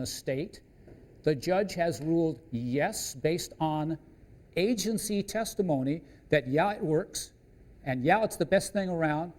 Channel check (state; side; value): identical; both; correlation 1.00